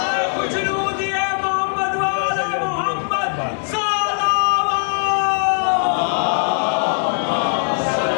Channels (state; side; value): silent; right; 65 dB below the other